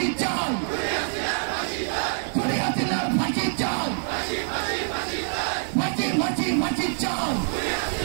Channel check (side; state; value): left; silent; digital silence